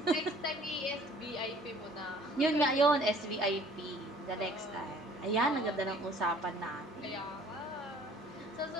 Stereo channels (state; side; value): normal; both; correlation 0.54